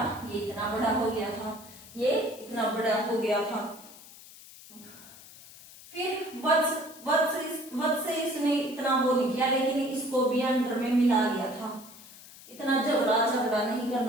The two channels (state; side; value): noise; left; hiss, 19 dB below the sound